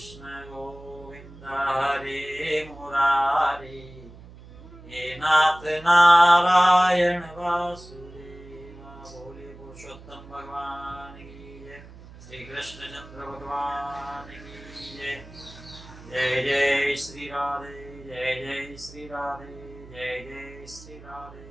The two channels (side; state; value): right; noise; hum, 18 dB below the sound